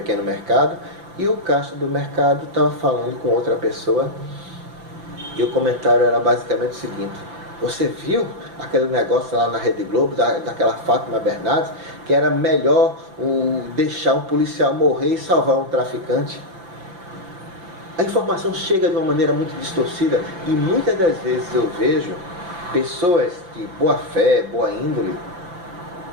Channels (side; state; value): left; late; 5.9 ms